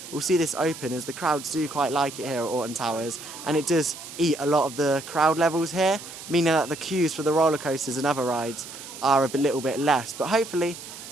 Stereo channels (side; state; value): right; noise; hiss, 13 dB below the sound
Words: we'll see this open as the crowds do quite like it here at Alton Towers, and it does eat a lot of the crowd levels here, meaning that the queues for the roller coasters and other rides are a little bit less. But hopefully